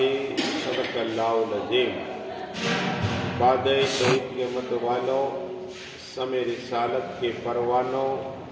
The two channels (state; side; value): identical; both; correlation 1.00